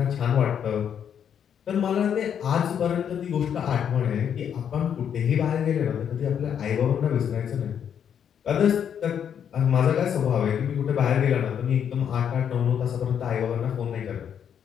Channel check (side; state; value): right; quieter; 8.4 dB